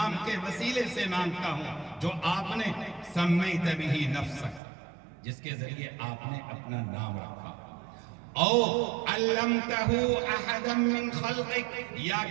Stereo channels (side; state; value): left; drops out; at 4.6 s